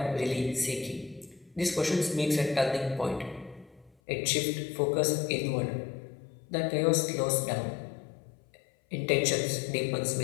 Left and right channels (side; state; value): right; drops out; at 4.0 s